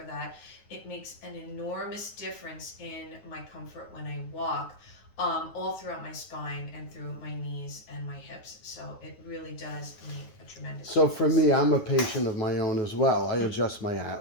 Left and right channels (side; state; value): right; late; 9.5 ms